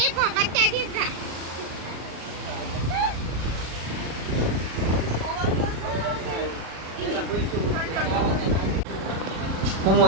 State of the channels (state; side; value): late; left; 37 ms